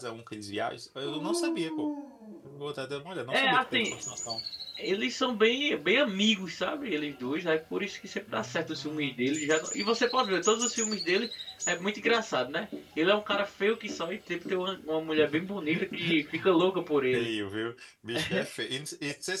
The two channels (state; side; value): identical; both; correlation 1.00